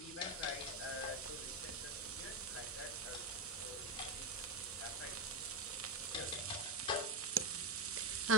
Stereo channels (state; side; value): normal; both; correlation 0.12